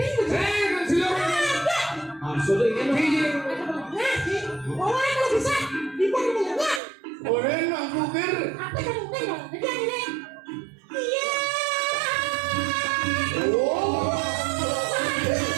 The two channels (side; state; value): left; drops out; at 6.8 s